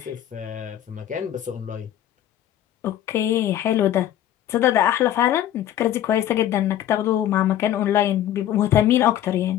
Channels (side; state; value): right; quieter; 11.7 dB